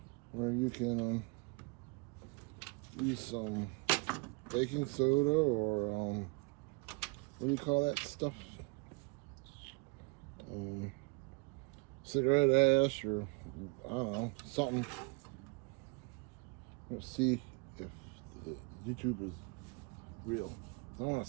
where you can use some baking soda or what do you call that stuff? Cigarette ash, or I don't know, something. Let's see if YouTube is real. I want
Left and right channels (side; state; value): left; quieter; 29.7 dB